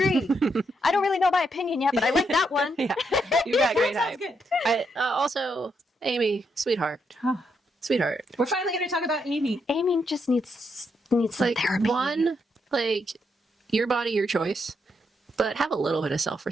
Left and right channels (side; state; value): both; normal; correlation 0.79